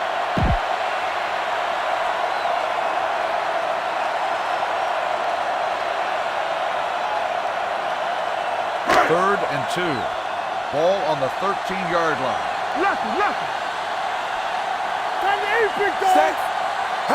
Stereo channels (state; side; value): identical; both; correlation 1.00